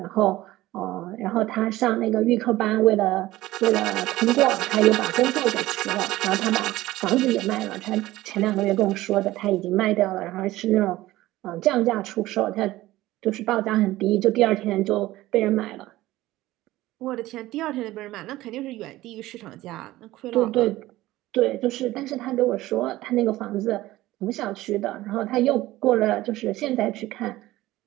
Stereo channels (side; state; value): left; quieter; 16.8 dB